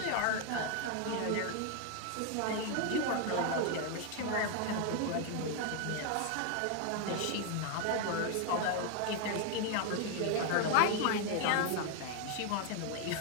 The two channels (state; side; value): different; both; correlation 0.01